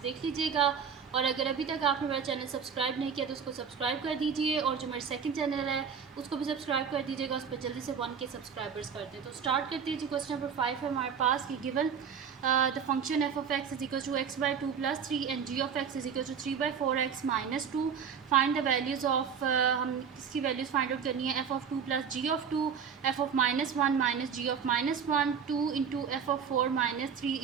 देख लीजिएगा। और अगर अभी तक आपने मेरा चैनल सब्सक्राइब नहीं किया तो उसको सब्सक्राइब कर दीजिए, और जो मेरा सेकंड चैनल है उसको भी सब्सक्राइब कर दीजिएगा, उस पर जल्दी से 1K सब्सक्राइबर्स करते हैं। तो स्टार्ट करते हैं जी। क्वेश्चन नंबर 5 है हमारे पास कि given the function f of x is equal to x by 2 plus 3 and g of x is equal to 3 by 4x minus 2. Find the values of हम इसकी वैल्यूज़ फाइंड आउट करनी है। f of 2 plus g of 2, f of minus 1 minus g of minus 1, 2 into f of 4 minus 3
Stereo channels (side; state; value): left; quieter; 6.9 dB